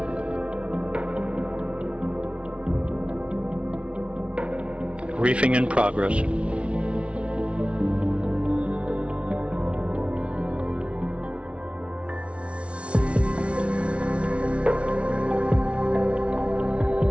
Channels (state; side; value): late; left; 0.060 ms